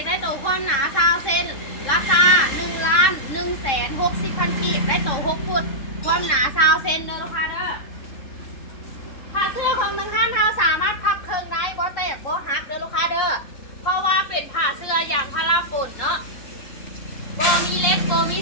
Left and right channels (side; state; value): right; late; 3.7 ms